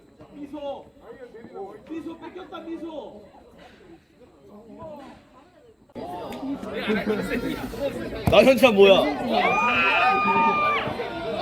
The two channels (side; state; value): both; identical; correlation 1.00